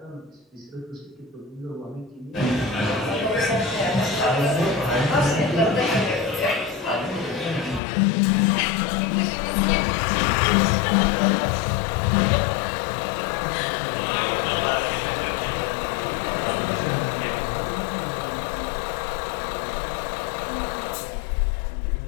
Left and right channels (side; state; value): right; drops out; at 7.8 s